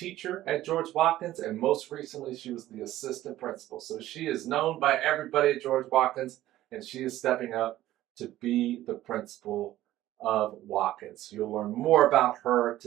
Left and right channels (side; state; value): left; quieter; 14.5 dB